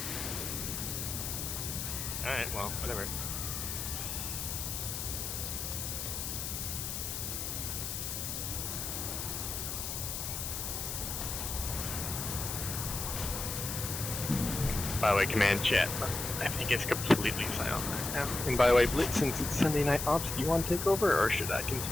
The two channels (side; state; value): left; noise; hiss, 4 dB below the sound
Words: Alright, well, whatever. By the way, command chat. I think it's completely silent now. And by the way, Blitz, since it's Sunday Night Ops, do you want to take over, or should I